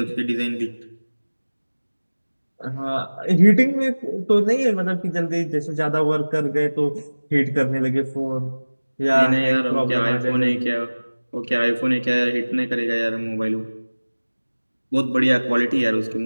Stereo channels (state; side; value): inverted; both; correlation -1.00